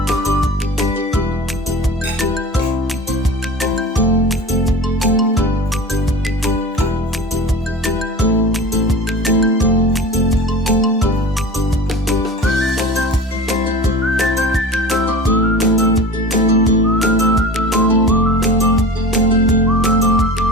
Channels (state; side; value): normal; both; correlation 0.34